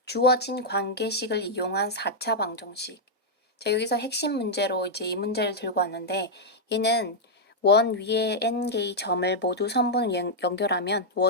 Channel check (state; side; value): normal; both; correlation -0.04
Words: 주어진 관계식을 이용한 4차 방정식. 자, 여기서 핵심 문제로 이제 이 문제를 들고 왔는데 얘는 원 위에 n개의 점을 모두 선분을 연결하면